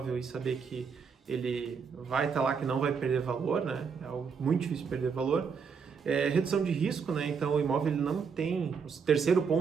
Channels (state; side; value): quieter; left; 6.0 dB